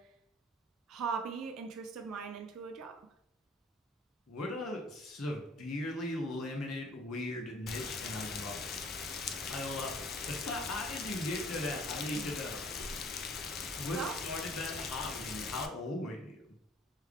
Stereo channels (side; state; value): both; normal; correlation 0.53